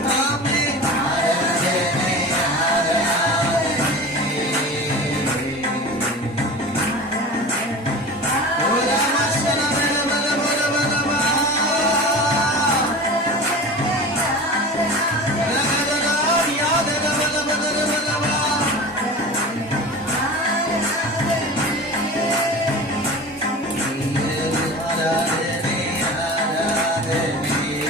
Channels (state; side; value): normal; both; correlation 0.34